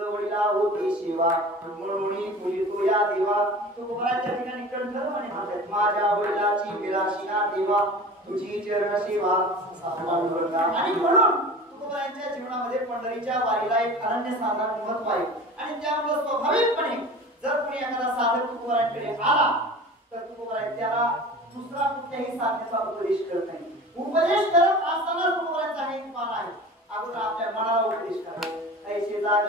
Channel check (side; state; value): both; normal; correlation 0.38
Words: होती सेवा म्हणून पूजितो या देवा तुकोबाच्या ठिकाणी कंठध्वनी म्हणतात माझ्या वडिलाची विलासिना देवा तुझी चरण सेवा पांडुरंगा आणि म्हणून तुकोबाच्या जीवनामध्ये पंढरीच्या वारीला एक अनन्यसाधारण महत्व आहे आणि त्यामुळे स्वाभाविकपणे जर कोणी एखादा साधक तुकोबाकडे आला तर तुकोबा त्याला दुसरा कुठल्याही साधनेचा उपदेश करत नाही उपदेश करत असताना तुकोबाचा एक मान आहे अगोदर आपल्या मनाला उपदेश करा ऐसे